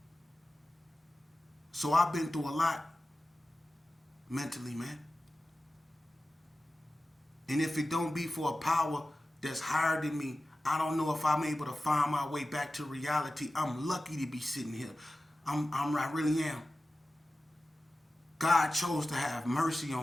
So I've been through a lot mentally, man. And if it don't be for a power that's higher than me, I don't know if I'm able to find my way back to reality. I'm lucky to be sitting here. I really am. God chose to have mercy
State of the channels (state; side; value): normal; both; correlation 0.95